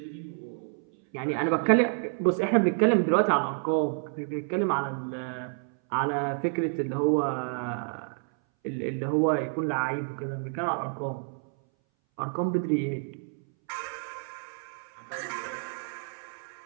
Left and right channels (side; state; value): left; silent; 59 dB below the other